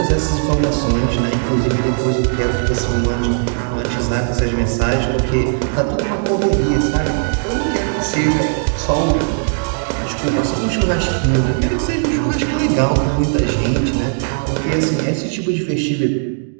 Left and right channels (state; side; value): silent; left; digital silence